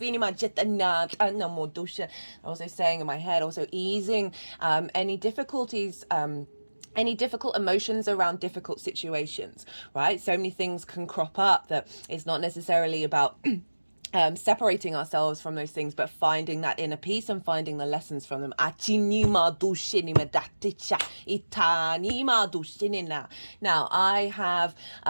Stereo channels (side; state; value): both; inverted; correlation -1.00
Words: also saying in my head, also easing any difficulties, any difficult emotions around difficult situations, right? So many things can crop up that it's not necessarily about separating ourselves from those things, but finding that inner peace and finding the lessons from them. Now, I have